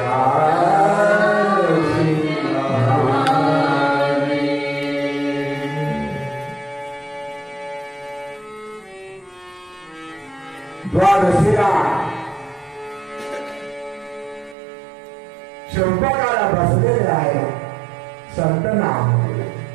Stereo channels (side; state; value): left; drops out; at 14.6 s